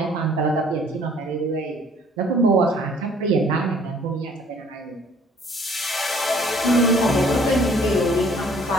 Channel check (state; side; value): normal; both; correlation 0.57